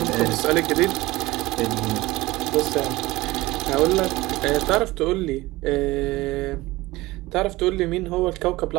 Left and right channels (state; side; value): quieter; left; 19.5 dB